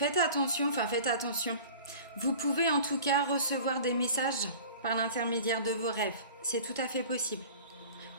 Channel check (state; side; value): inverted; both; correlation -0.42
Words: attention. Vous pouvez en tout cas recevoir des messages par l'intermédiaire de vos rêves. C'est tout à fait possible.